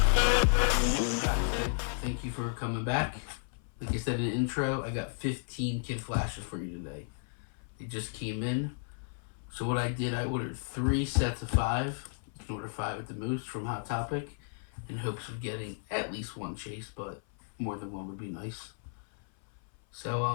Thank you for coming back. Like I said in the intro, I got 15 kid flashes for you today. They just came in. So what I did, I ordered 3 sets of 5. You can order 5 at the most from Hot Topic in hopes of getting at least one chase, but more than one would be nice. So,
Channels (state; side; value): silent; right; 56 dB below the other